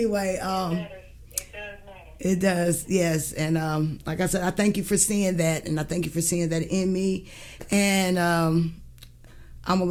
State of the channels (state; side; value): identical; both; correlation 1.00